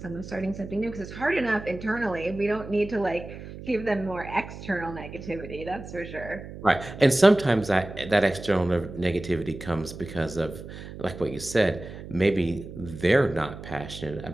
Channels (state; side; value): noise; right; hum, 12 dB below the sound